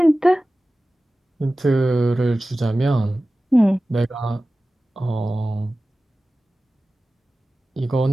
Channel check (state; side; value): normal; both; correlation 0.96